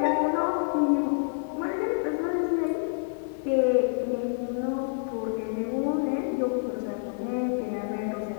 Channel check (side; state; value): right; silent; 59 dB below the other